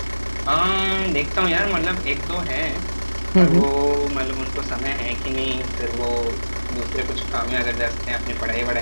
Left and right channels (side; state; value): both; inverted; correlation -1.00